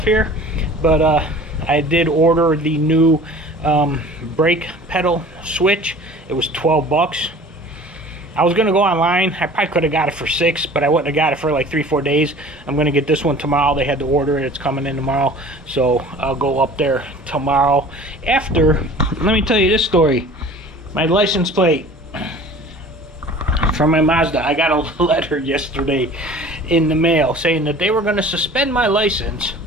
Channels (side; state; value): both; normal; correlation 0.45